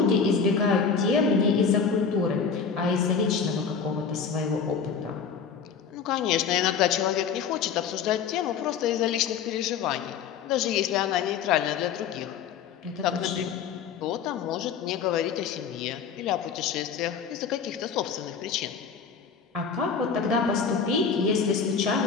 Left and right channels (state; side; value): quieter; right; 6.3 dB